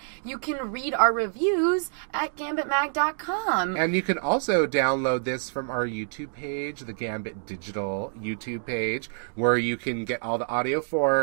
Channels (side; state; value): left; silent; digital silence